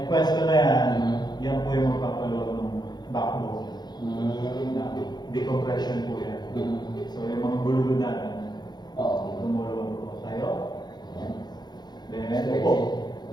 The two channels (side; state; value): right; late; 0.20 ms